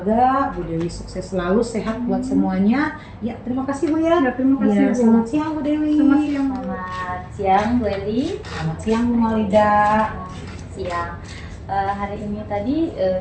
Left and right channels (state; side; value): identical; both; correlation 1.00